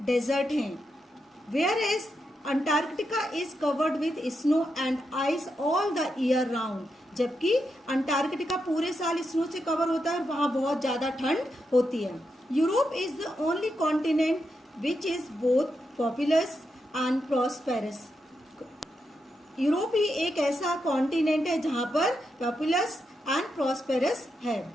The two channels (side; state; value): both; normal; correlation 0.84